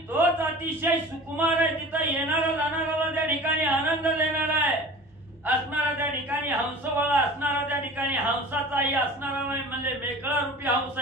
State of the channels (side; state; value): both; normal; correlation 0.40